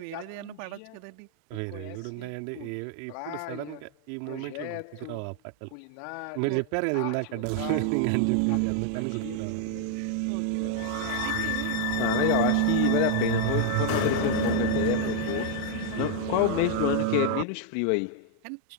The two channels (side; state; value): both; different; correlation 0.00